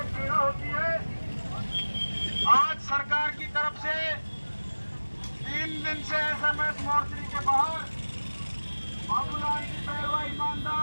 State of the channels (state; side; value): inverted; both; correlation -1.00